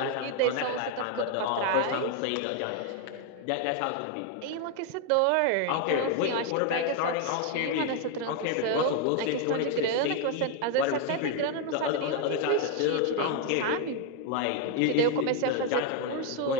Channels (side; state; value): both; different; correlation 0.01